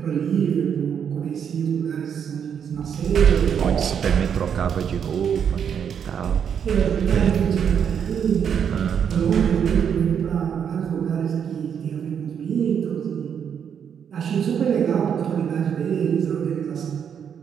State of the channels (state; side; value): quieter; left; 7.9 dB